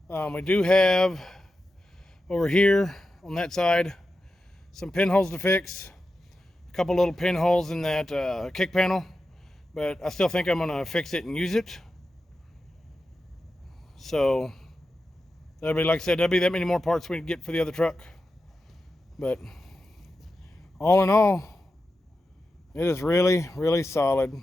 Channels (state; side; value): normal; both; correlation 0.91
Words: We do have over here on that side some pinholes to fix, a couple little pinholes in that kick panel, but I still think I'm going to fix it and use it. So that'll be, like I said, that'll be that many more parts we can get for the other truck. But all in all, it is really, really solid.